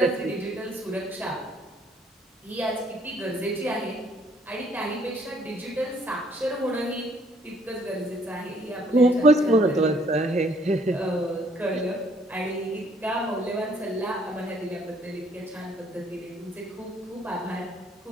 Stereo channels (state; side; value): normal; both; correlation 0.63